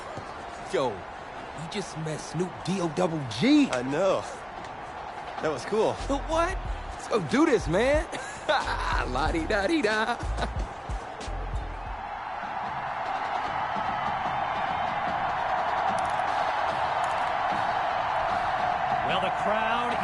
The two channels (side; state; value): both; identical; correlation 1.00